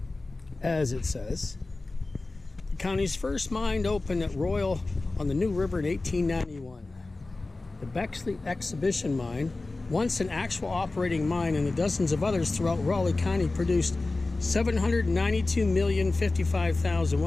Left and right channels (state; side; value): quieter; right; 3.3 dB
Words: as it says. The county's first mine opened at Royal on the New River in 1891. The Beckley Exhibition Mine, once an actual operating mine, and the dozens of others throughout Raleigh County, produced